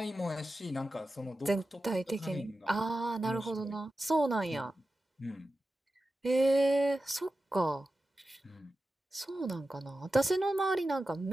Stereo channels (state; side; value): normal; both; correlation 0.93